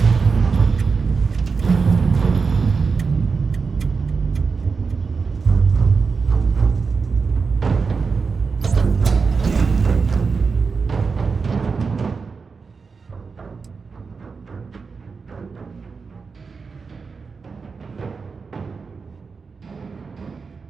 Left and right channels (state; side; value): quieter; left; 5.0 dB